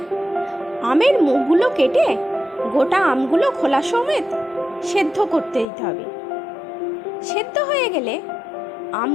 আমের মুখগুলো কেটে গোটা আমগুলো খোলা সমেত সেদ্ধ করতে দিতে হবে। সেদ্ধ হয়ে গেলে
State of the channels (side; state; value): right; drops out; at 5.7 s